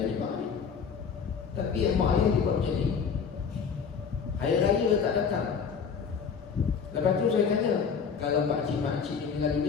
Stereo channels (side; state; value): right; quieter; 6.3 dB